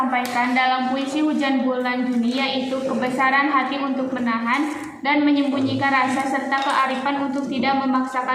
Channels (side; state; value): both; identical; correlation 1.00